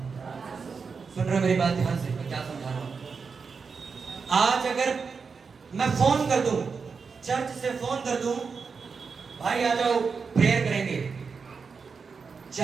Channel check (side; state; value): left; quieter; 5.3 dB